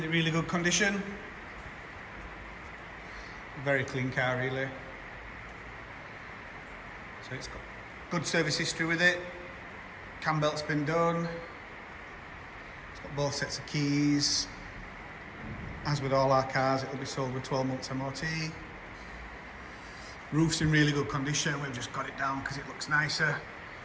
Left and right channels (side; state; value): both; identical; correlation 1.00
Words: good condition. Very clean car really. So it's got good service history with it. Cambelt's been done. It's got both sets of keys. As with all our cars, it'll be sold with 12 months MOT. Roof's in really good condition. We've just got it down because it looks nicer.